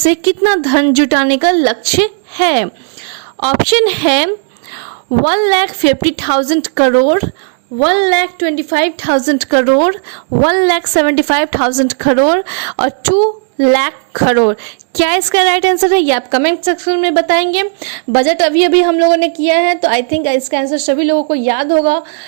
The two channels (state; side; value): silent; left; digital silence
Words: कितना धन जुटाने का लक्ष्य है। ऑप्शन है 1,50,000 करोड़, 1,25,000 करोड़, 1,75,000 करोड़ और 2 लाख करोड़। क्या इसका राइट आंसर है, ये आप कमेंट सेक्शन में बताएंगे। बजट अभी हम लोगों ने किया है, तो आई थिंक इसका आंसर सभी लोगों को याद होगा।